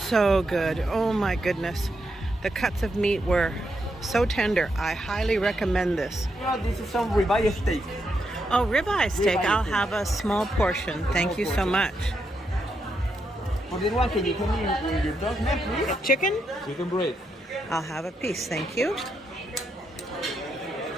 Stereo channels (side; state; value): both; normal; correlation 0.81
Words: so good. Oh my goodness. The cuts of meat were so tender. I highly recommend this. This is some ribeye steak. Oh, ribeye steak. I'll have a small portion. Thank you so much. For this one, can you tell me your dog's name, please? Chicken? Chicken breast. I'll have a piece. Thank you.